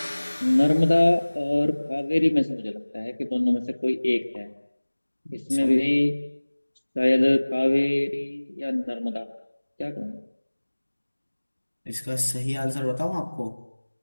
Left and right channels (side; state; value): both; inverted; correlation -1.00